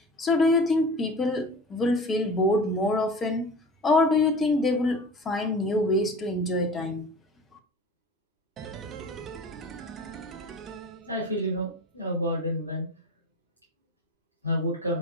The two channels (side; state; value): both; normal; correlation 0.36